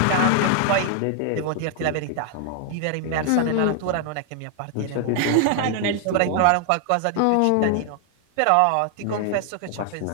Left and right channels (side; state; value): both; different; correlation 0.00